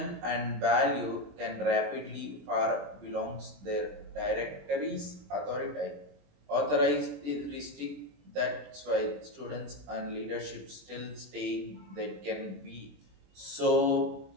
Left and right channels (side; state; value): left; late; 20 ms